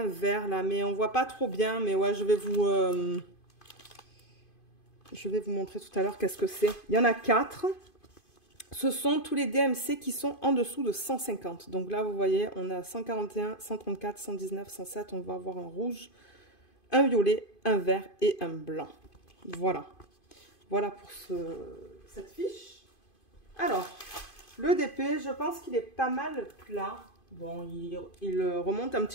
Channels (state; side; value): late; right; 2.5 ms